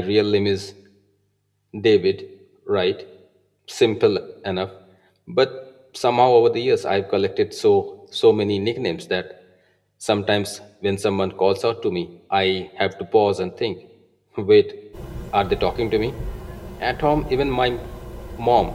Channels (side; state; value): both; identical; correlation 1.00